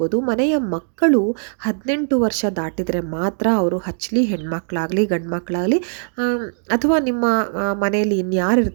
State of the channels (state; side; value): silent; left; digital silence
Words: ಮನೆಯ ಮಕ್ಕಳು 18 ವರ್ಷ ದಾಟಿದರೆ ಮಾತ್ರ ಅವರು ಹಚ್ಚಲಿ, ಹೆಣ್ಮಕ್ಳಾಗಲಿ ಗಂಡು ಮಕ್ಕಳಾಗಲಿ, ಅಥವಾ ನಿಮ್ಮ ಮನೆಯಲ್ಲಿ